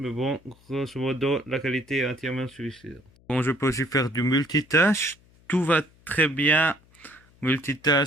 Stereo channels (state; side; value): noise; left; hum, 30 dB below the sound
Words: bon, grosso modo, la qualité est entièrement suffisante. Bon, je peux aussi faire du multitâche. Tout va très bien.